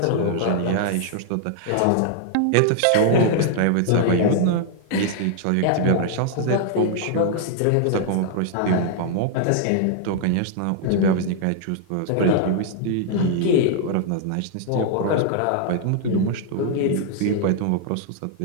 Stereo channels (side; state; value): both; different; correlation 0.00